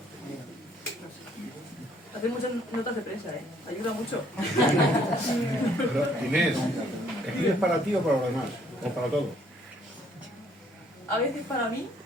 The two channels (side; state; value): both; normal; correlation 0.64